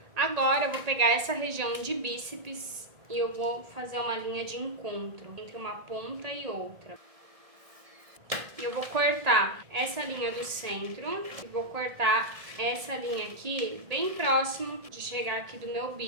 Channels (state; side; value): late; left; 1.9 ms